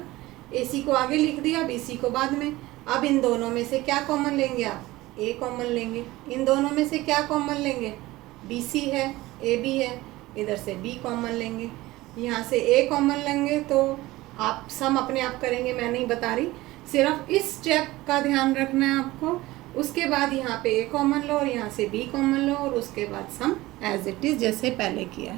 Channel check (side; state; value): left; quieter; 18.6 dB